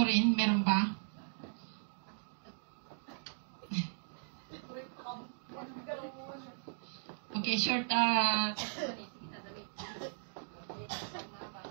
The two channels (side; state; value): left; silent; digital silence